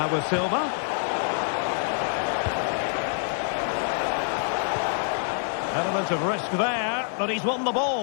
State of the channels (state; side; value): silent; right; digital silence